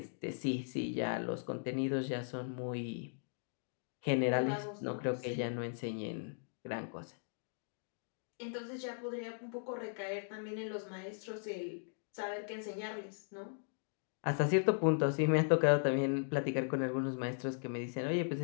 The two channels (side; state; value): right; silent; digital silence